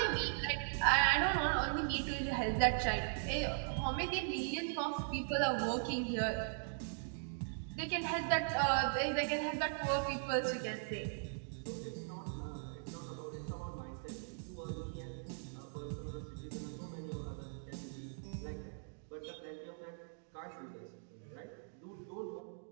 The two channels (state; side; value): silent; left; digital silence